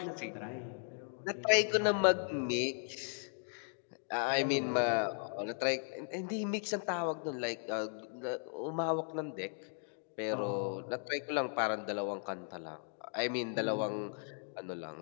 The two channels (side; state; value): right; silent; 53 dB below the other